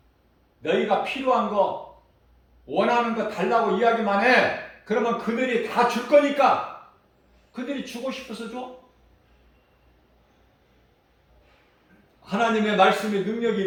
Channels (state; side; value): identical; both; correlation 1.00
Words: 너희가 필요한 거, 원하는 거 달라고 이야기만 해. 그러면 그들이 다 줄 거니까. 그들이 주고 싶어서 줘. 하나님의 말씀의 능력이